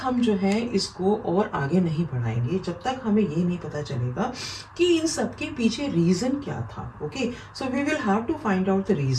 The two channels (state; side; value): identical; both; correlation 1.00